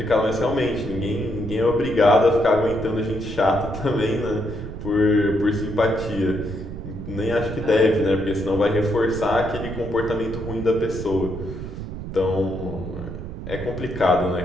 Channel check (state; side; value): noise; right; rumble, 9 dB below the sound